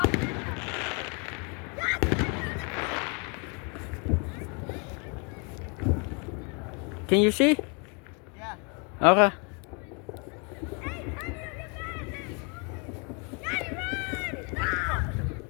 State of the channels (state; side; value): quieter; right; 34.2 dB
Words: Can you see? Yeah. Okay.